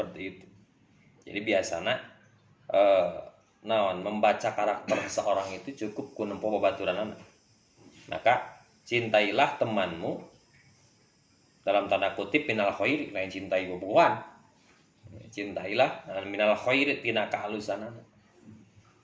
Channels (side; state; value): both; identical; correlation 1.00